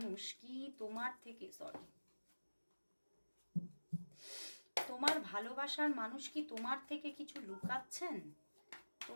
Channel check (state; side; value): inverted; both; correlation -1.00